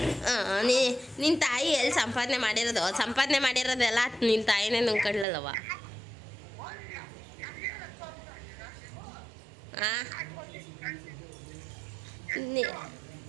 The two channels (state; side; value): drops out; left; at 5.2 s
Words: ನಿನ್ನ ತಾಯಿ ಎಲ್ಲಿ ಸಂಪಾದನೆ ಮಾಡಿರೋದು? ಸಂಪಾದನೆ ಮಾಡಿರೋದೆಲ್ಲ ನಿನ್ನ ತಾಯಿನೇ ನುಂಗ್ಕೊಳ್ಳಲ್ಲವ.